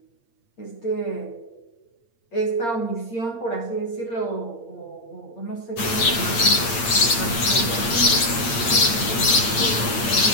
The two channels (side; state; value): right; late; 8.7 ms